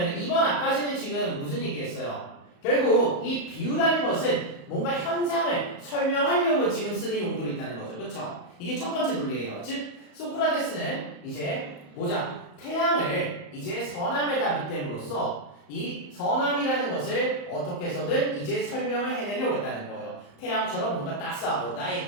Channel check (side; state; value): right; late; 34 ms